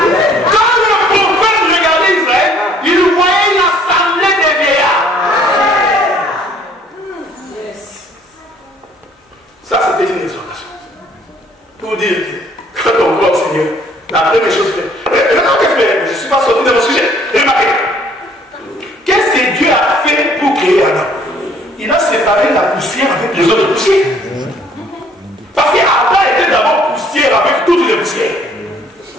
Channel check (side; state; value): both; normal; correlation 0.60